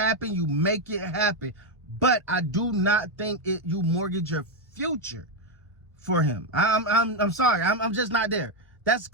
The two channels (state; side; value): normal; both; correlation 0.05